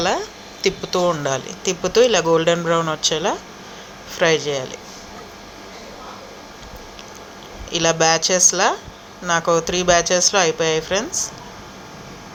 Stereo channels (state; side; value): identical; both; correlation 1.00